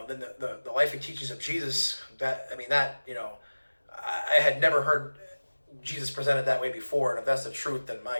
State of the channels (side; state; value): both; inverted; correlation -1.00